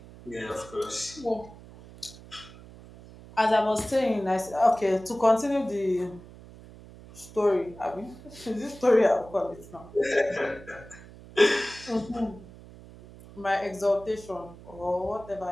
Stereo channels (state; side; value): noise; right; hum, 19 dB below the sound